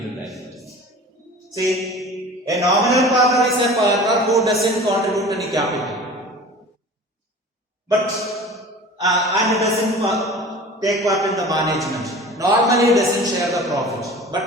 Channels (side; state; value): both; normal; correlation 0.40